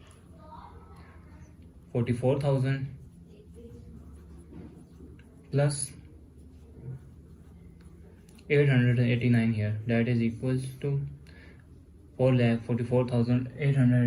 plus 889 here, that is equals to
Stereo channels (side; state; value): both; identical; correlation 1.00